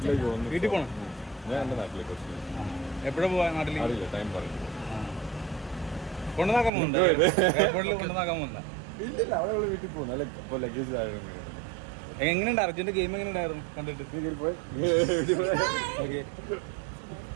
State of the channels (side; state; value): left; drops out; at 6.7 s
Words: വീട്ടിൽ പോണം. ഞാൻ എൻ്റെ നാട്ടിലേക്ക് എപ്പോഴും പോവാ നാട്ടിൽ? ടൈം പറയും. കൊണ്ടുനാക്കാൻ പോകുന്നുണ്ട്, എയർപോർട്ടിൽ കൊണ്ടുനാക്കാൻ പോകുന്ന? ഇല്ലില്ല, അവിടെ വീട്ടിൽ പോകുന്നു. അല്ല, ഇപ്പോൾ ലഗേജ് ആയിരുന്നു. എങ്ങനെയുണ്ട് അർജുൻ്റെ ഗെയിം? എങ്ങനെ ഉണ്ടായിരുന്നു കണ്ടിട്ട്? പോയി ഓക്കെ.